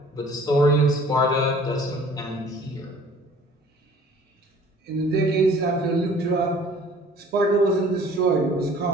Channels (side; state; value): both; normal; correlation 0.51